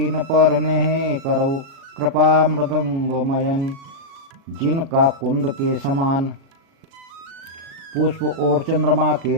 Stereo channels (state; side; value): late; left; 37 ms